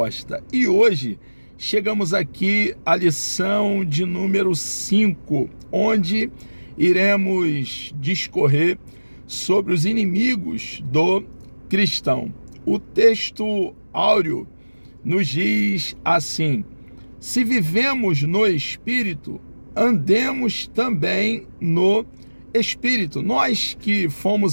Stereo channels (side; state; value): both; inverted; correlation -1.00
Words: E hoje chegamos aqui à lição de número 5, onde iremos discorrer sobre os inimigos do cristão. O texto áureo nos diz assim: se vivemos no Espírito, andemos também no Espírito. Nós que